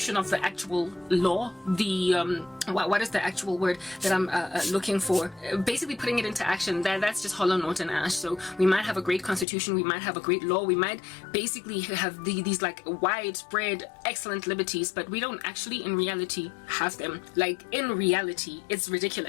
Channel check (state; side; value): drops out; right; at 9.5 s